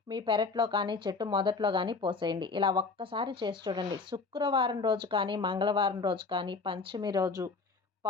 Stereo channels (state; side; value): quieter; right; 4.3 dB